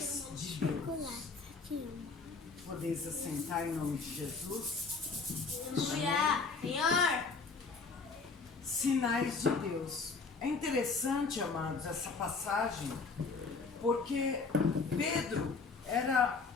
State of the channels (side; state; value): right; quieter; 4.5 dB